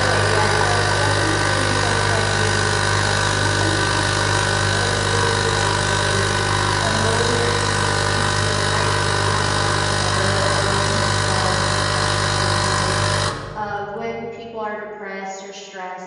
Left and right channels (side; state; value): both; identical; correlation 1.00